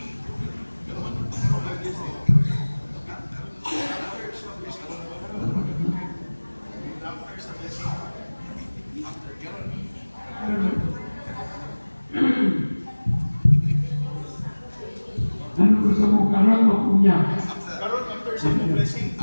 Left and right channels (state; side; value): inverted; both; correlation -1.00